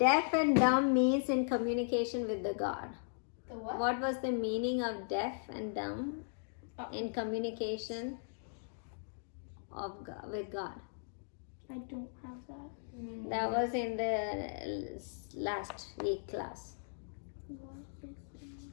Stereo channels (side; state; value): right; silent; digital silence